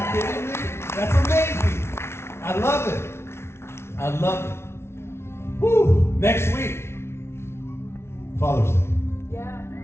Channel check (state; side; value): late; right; 0.12 ms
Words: kidding me? That's amazing. I love it. I love it. Woo! Next week, Father's